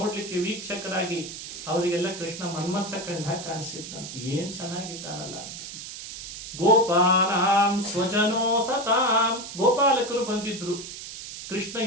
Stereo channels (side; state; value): right; noise; hiss, 10 dB below the sound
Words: ವೀಕ್ಷಕರಾಗಿ. ಅವರಿಗೆಲ್ಲ ಕೃಷ್ಣ ಮನ್ಮಥ ಕಂಡ ಕಾಣಿಸಿದ್ದಂತೆ, ಏನ್ ಚೆನ್ನಾಗಿದ್ದಾನಲ್ಲ ಅಂತ. ಗೋಪಾನಾಂ ಸ್ವಜನೋ ಸತಾಂ, ಗೋಪಾಲಕರು ಬಂದಿದ್ರು. ಕೃಷ್ಣ